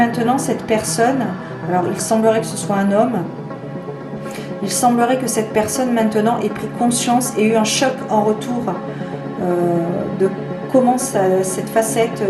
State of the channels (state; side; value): identical; both; correlation 1.00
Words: cette personne, alors il semblerait que ce soit un homme, il semblerait que cette personne maintenant ait pris conscience et eu un choc en retour de comment cette facette,